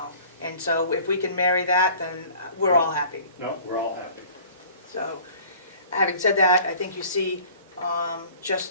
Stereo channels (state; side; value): inverted; both; correlation -0.48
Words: And so if we can marry that, then we're all happy. No, we're all happy. So, having said that, I think you see